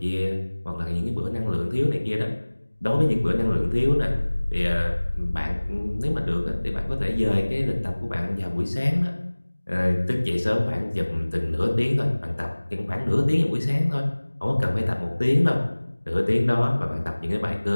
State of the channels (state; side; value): inverted; both; correlation -1.00